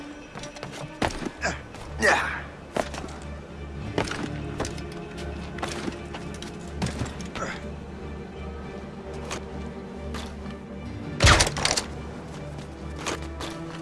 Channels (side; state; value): both; identical; correlation 1.00